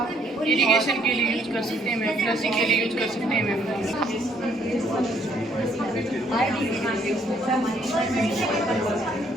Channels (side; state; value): both; normal; correlation 0.66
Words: इरिगेशन के लिए यूज कर सकते हैं मैम, फ्लशिंग के लिए यूज कर सकते हैं मैम।